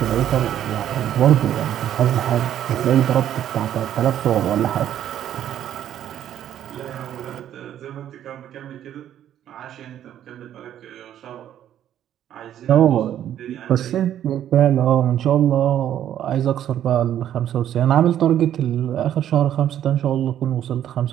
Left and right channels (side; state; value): left; quieter; 10.9 dB